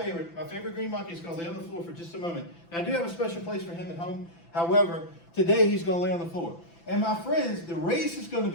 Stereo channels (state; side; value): late; right; 5.9 ms